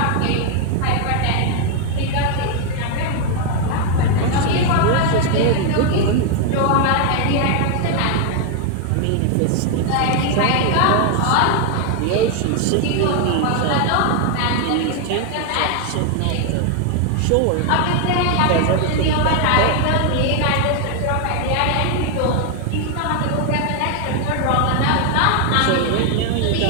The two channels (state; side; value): different; both; correlation 0.00